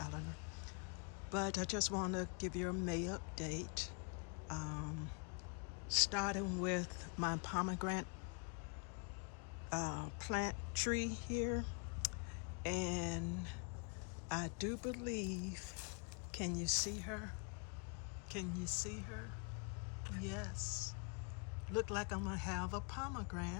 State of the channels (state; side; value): quieter; right; 37.7 dB